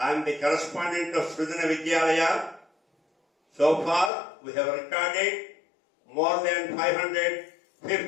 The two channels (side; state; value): right; drops out; at 4.1 s